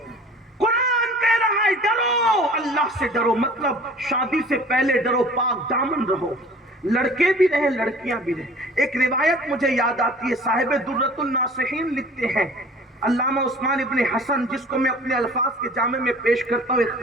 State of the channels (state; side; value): normal; both; correlation 0.47